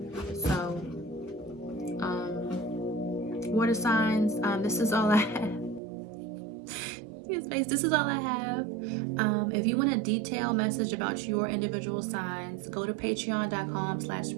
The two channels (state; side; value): drops out; left; at 5.8 s